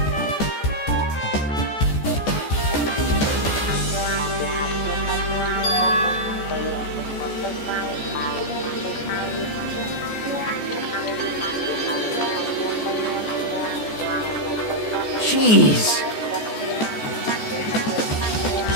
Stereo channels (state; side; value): late; right; 14 ms